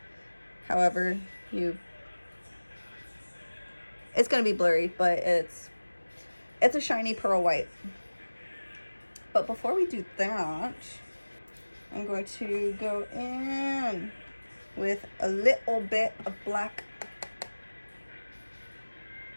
However, it's gonna be blurry, but it's a shiny pearl white. But before we do that, I'm going to go in with a little bit of black.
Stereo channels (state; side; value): inverted; both; correlation -1.00